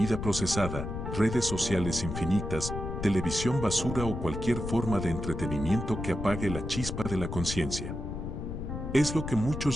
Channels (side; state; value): left; noise; rumble, 5 dB below the sound